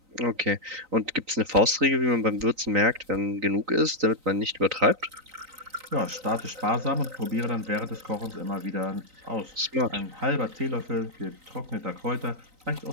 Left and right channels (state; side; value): late; left; 3.9 ms